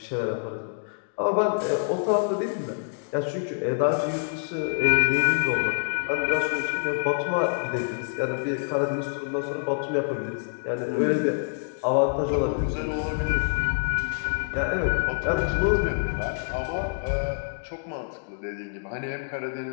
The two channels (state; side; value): silent; right; digital silence